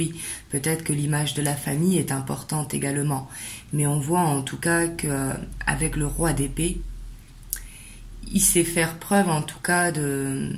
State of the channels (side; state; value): both; identical; correlation 1.00